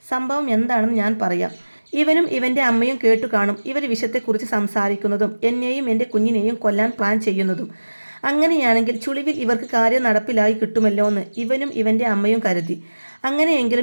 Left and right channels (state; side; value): inverted; both; correlation -1.00